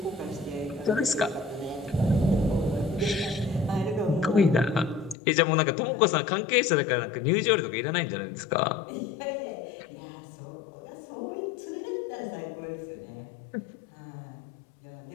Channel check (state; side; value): drops out; right; at 5.2 s